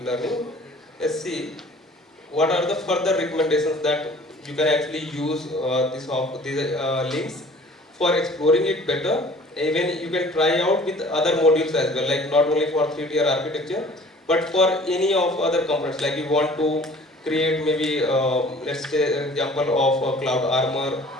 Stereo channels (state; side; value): normal; both; correlation 0.49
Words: learning, let's see what are the further recommendations that you can actually use these links for exploring it better. Even you can try out with other modules as well, like not only for 3-tier architecture, but for any of other components. Like you want to create maybe let's say an example of Cloud Armor